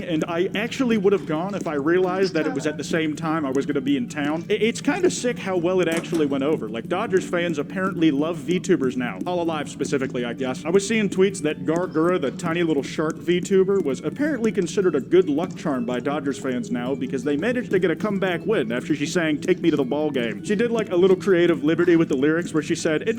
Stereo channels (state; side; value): identical; both; correlation 1.00